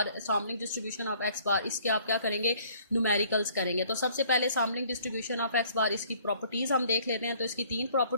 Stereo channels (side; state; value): both; inverted; correlation -0.58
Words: Sampling distribution of x bar, इसके आप क्या करेंगे, न्यूमेरिकल्स करेंगे। तो सबसे पहले सैम्पलिंग डिस्ट्रीब्यूशन ऑफ एक्स बार, इसकी प्रॉपर्टीज हम देख लेते हैं। तो इसकी 3